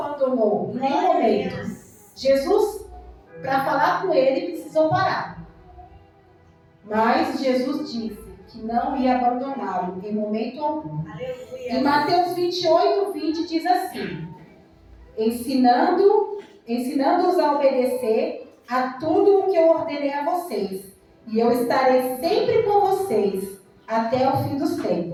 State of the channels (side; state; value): both; identical; correlation 1.00